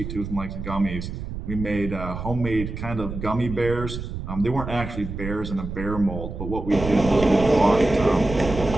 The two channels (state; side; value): noise; right; rumble, 7 dB below the sound